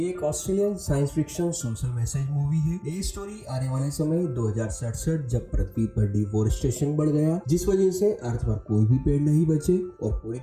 एक Australian science fiction social message movie है। ये स्टोरी आने वाले समय 2067 जब पृथ्वी पर डिफोरेस्टेशन बढ़ गया, जिस वजह से अर्थ पर कोई भी पेड़ नहीं बचे और पूरी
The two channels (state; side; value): identical; both; correlation 1.00